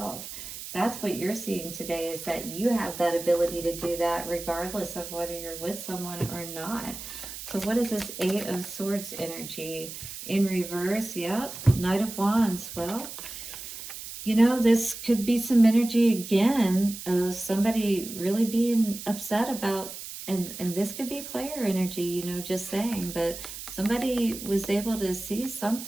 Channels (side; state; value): right; noise; hiss, 10 dB below the sound